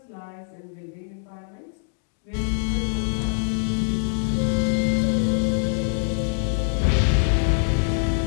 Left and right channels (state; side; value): silent; right; digital silence